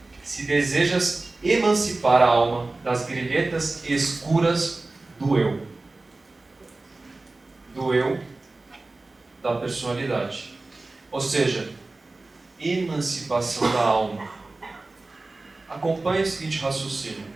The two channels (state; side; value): quieter; left; 3.2 dB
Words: se desejas emancipar a alma das grilhetas escuras do eu. Do eu da personalidade. Ou seja, emancipação da alma. Acompanhe o seguinte raciocínio.